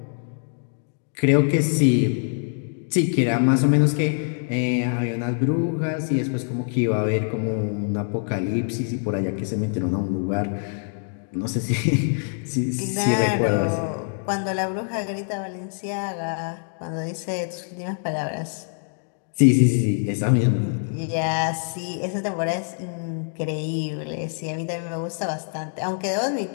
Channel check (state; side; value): silent; right; 59 dB below the other